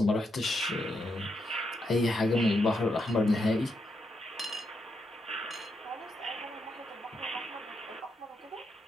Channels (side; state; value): both; normal; correlation 0.81